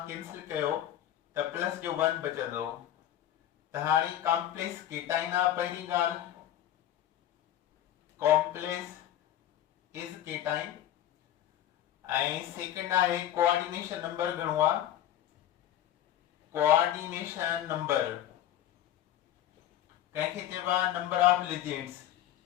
कैंसिल कयो त प्लस जो 1 बचंदो। त हाणे कॉम्प्लेक्स केटाइन आहे पहिरीं ॻाल्हि, कॉम्प्लेक्स इज केटाइन। ऐं सेकंड आहे कोऑर्डिनेशन नंबर घणो आहे? कोऑर्डिनेशन नंबर कंहिंखे चइबो आहे number of legends.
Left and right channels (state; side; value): quieter; right; 12.1 dB